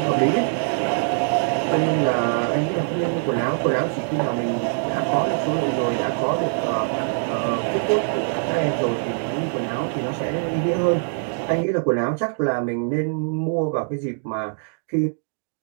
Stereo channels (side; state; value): left; silent; digital silence